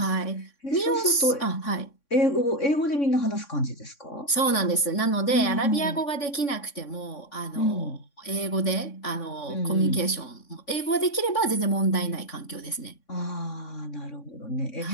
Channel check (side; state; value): right; late; 3.6 ms